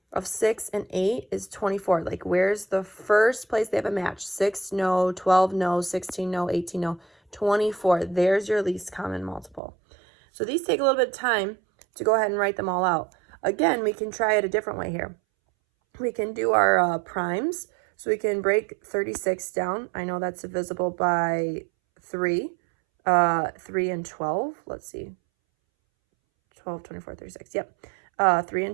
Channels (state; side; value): drops out; left; at 9.6 s